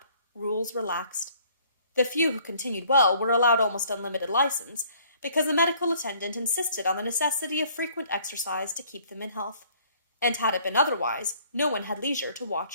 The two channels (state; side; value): inverted; both; correlation -0.59